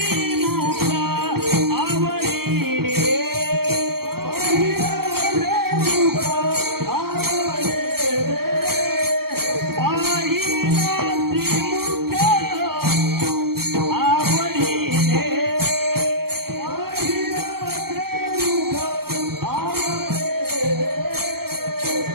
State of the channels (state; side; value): late; left; 0.95 ms